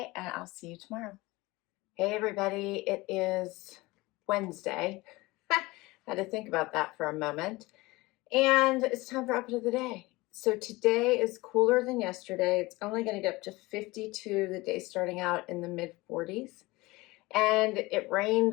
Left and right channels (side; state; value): right; quieter; 21.4 dB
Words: and I'll see you tomorrow. Hey, everybody. It is Wednesday. Had to think about that for a moment. And it's time for outfit of the day. So today is cooler than yesterday. It's only going to get up to 52, the day starting out in the mid-40s. And it rained